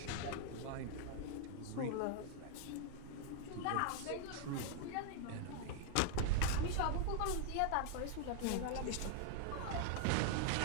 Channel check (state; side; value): different; both; correlation 0.00